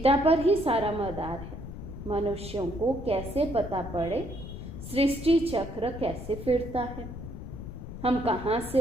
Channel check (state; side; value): noise; left; rumble, 10 dB below the sound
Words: पर ही सारा मदार है। मनुष्यों को कैसे पता पड़े सृष्टि चक्र कैसे फिरता है, हम कहाँ